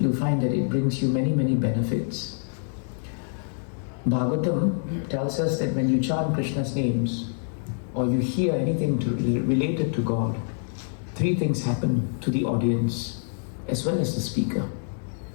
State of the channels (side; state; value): right; silent; digital silence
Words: find that it brings you many, many benefits. Bhagavatam tells us that when you chant Krishna's names or you hear anything related to God, three things happen to the audience as well as the speaker.